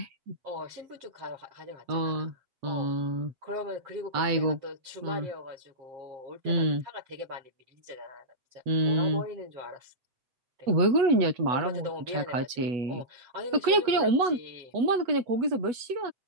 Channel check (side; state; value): left; late; 8.2 ms